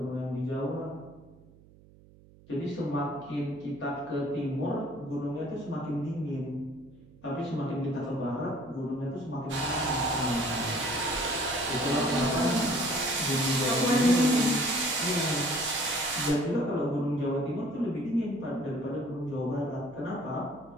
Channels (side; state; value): right; noise; hum, 25 dB below the sound